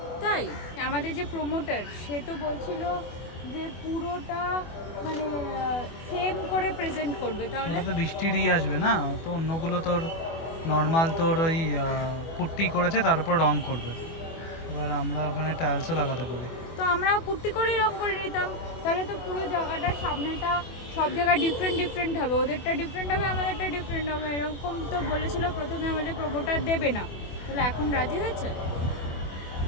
তাই আমাদের যে প্রমোটার সে তো বলছিল যে পুরোটা মানে সেম করে প্রেজেন্ট করবে, তাহলে ওটা তো বৃষ্টিরই আসবে না, তো অন্যগুলো তোর নর্মাল তোর ওই পুট্টি করেছে তার উপর রং করবে। এবার আমরা ওখানে টাইলসও লাগাতে পারি। তো আমরা পুট্টি করেই রং করে নিতাম, তাহলে তো পুরো জায়গাটার সামনেটা সব জায়গায় ডিফারেন্ট ডিফারেন্ট হবে, ওদেরটা ডিফারেন্ট হবে আমাদেরটা ডিফারেন্ট হবে, এরকম তো বলেছিল প্রথমে আমাদের প্রমোটার দেবে না, তাহলে এখন রাজি হয়েছে।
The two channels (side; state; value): right; late; 24 ms